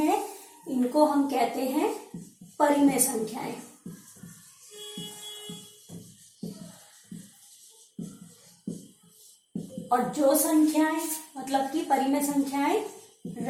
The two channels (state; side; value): identical; both; correlation 1.00